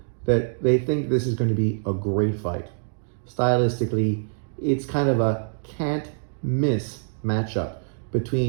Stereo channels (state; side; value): silent; left; digital silence